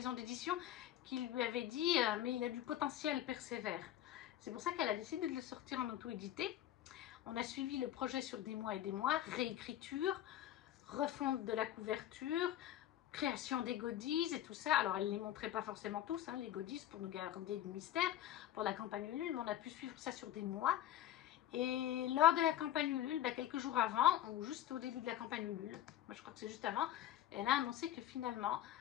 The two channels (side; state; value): right; quieter; 12.2 dB